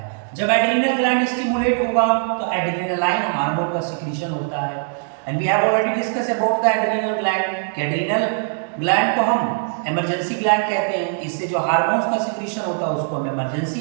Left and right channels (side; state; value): left; silent; 65 dB below the other